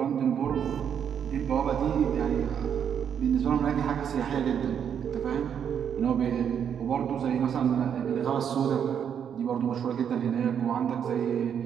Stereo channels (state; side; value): quieter; left; 8.2 dB